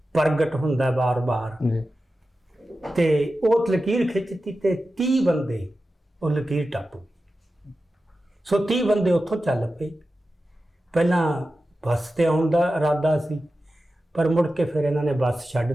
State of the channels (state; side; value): normal; both; correlation 0.93